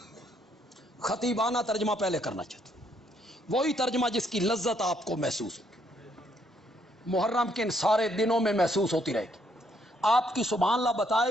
خطیبانہ ترجمہ پہلے کرنا چاہتا ہوں، وہی ترجمہ جس کی لذت آپ کو محسوس ہوگی، محرم کے ان سارے دنوں میں محسوس ہوتی رہے گی۔ آپ کی سبحان اللہ بتائے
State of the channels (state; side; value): normal; both; correlation 0.71